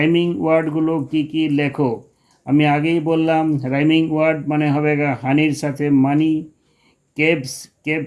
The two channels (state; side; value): identical; both; correlation 1.00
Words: ওয়ার্ডগুলো কি কি লেখো। আমি আগেই বললাম राइमिंग वर्ड माने होगा हानिर साथे मनी, केब्स केब